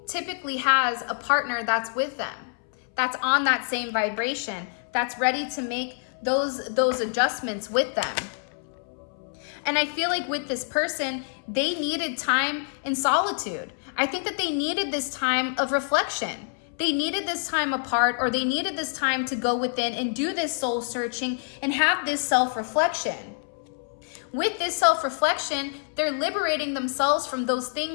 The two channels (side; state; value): right; silent; 61 dB below the other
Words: typically has a partner that's with them, that's on that same vibration, that's ready to make those adjustments with them. And I feel like with this person, they needed time in solitude. I think that they needed this time of reflection. They needed this time apart, or they needed this time to go within and do this soul searching and have this self-reflection. With this self-reflection, they're liberating themselves from those